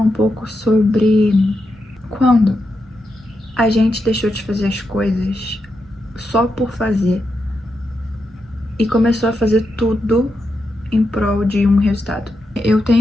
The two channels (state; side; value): normal; both; correlation 0.86